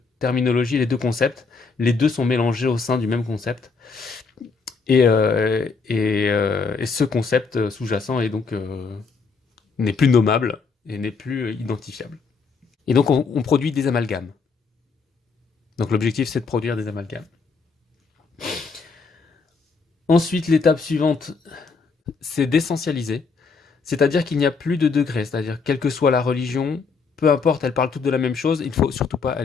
terminologies, les deux concepts. Les deux sont mélangés au sein du même concept. Et ce concept sous-jacent est donc n'est plus nommable et n'est plus identifiable. Et donc on produit des amalgames. Donc l'objectif c'est de produire des amalgames. Ensuite, l'étape suivante, c'est d'essentialiser. C'est-à-dire qu'il n'y a plus de degrés. C'est-à-dire quelle que soit la religion, peu importe, elles parlent toutes de la même chose. Il ne faut surtout pas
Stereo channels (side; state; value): right; quieter; 4.8 dB